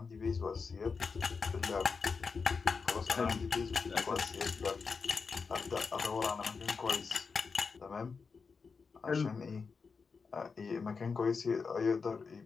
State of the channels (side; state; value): right; quieter; 5.1 dB